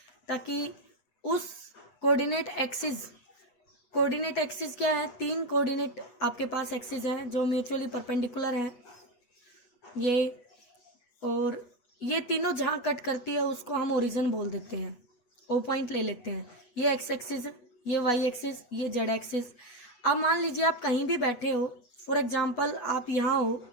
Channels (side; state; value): right; late; 8.2 ms